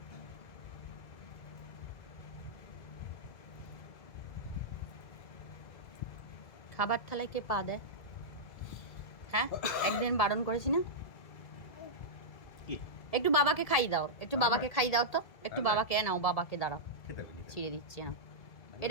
খাবার থালায় কে পা দেয়? হ্যাঁ, একদিন বারণ করেছি না? একটু বাবাকে খাই দাও, একটু বাবাকে খাই দাও তো, একটু বাবাকে নাও, বাবাকে দাঁড়াও, ছিঁড়ে দিচ্ছি না।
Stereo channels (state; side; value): late; right; 2.0 ms